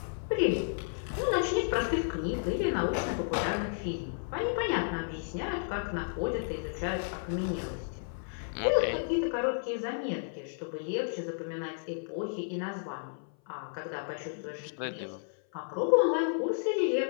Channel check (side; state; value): right; silent; 56 dB below the other